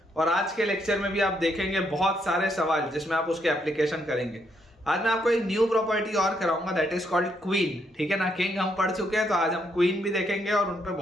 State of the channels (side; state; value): both; normal; correlation 0.75